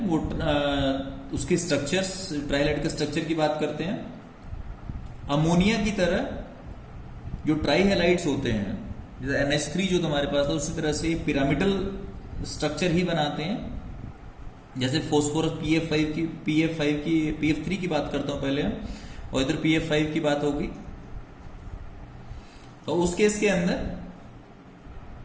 वो उसके स्ट्रक्चर्स, ट्राइहाइलाइड के स्ट्रक्चर की बात करते हैं। अमोनिया की तरह जो ट्राइहाइलाइड्स होते हैं, जैसे NH3 जो तुम्हारे पास था, उसी तरह से पिरामिडल स्ट्रक्चर ही बनाते हैं। जैसे फोस्फोरस PF3 की बात करता हूं पहले, और इधर PF5 की बात होगी। तो उस केस के अंदर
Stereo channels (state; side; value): identical; both; correlation 1.00